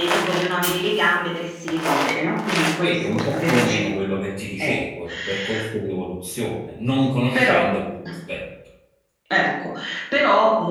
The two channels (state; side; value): identical; both; correlation 1.00